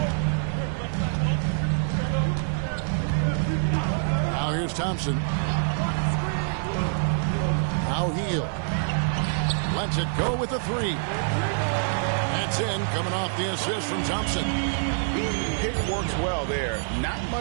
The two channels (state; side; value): silent; left; digital silence